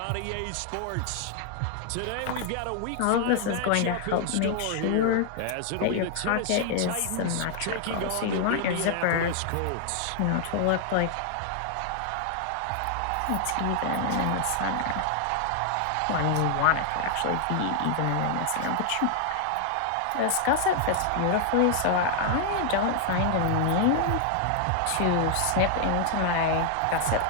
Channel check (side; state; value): both; different; correlation 0.00